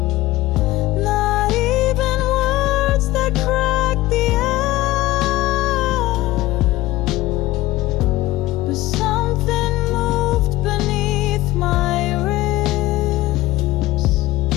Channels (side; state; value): right; quieter; 17.3 dB